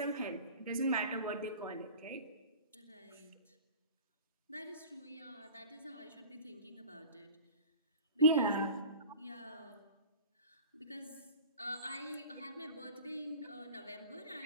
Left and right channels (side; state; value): both; inverted; correlation -0.41